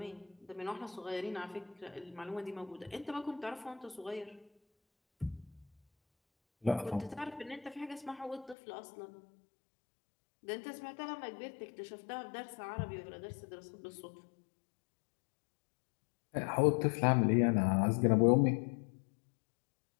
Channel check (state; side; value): drops out; right; at 8.6 s